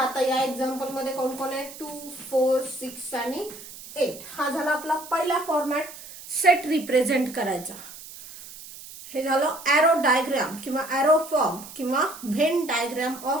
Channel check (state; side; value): noise; right; hiss, 15 dB below the sound